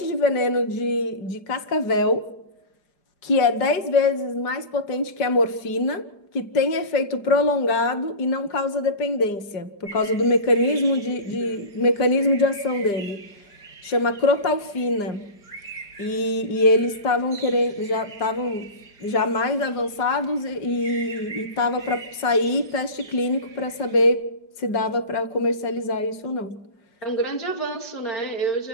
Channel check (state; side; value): late; right; 4.9 ms